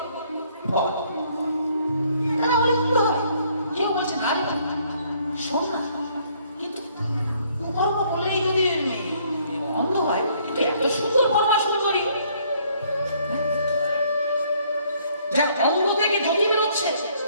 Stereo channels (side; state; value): both; inverted; correlation -0.64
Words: ফল। তারা বলে কি হবে? কেউ বলছেন আরে শোন না, কিন্তু কুকর্ম বলেই যদি অন্ধ হয়, কিন্তু এত সুন্দর পরমা সুন্দরী যা অন্ধ থেকে জ্যোতি বেরোচ্ছে,